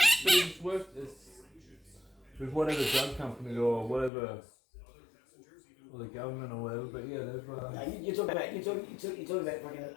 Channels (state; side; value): drops out; right; at 4.1 s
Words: worked with whatever drug company or whatever, or the government or whatever, but yeah, they've... You're talking about fucking